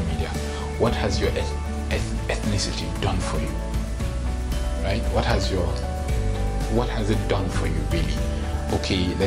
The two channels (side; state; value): both; identical; correlation 1.00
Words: media: what has your ethnicity done for you? Right? What has it done for you, really? Okay,